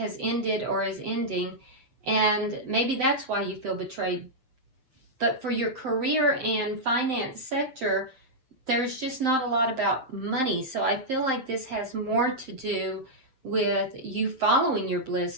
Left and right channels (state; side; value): late; left; 7.6 ms